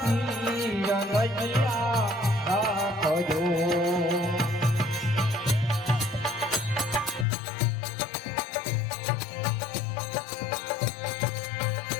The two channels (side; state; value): right; drops out; at 7.2 s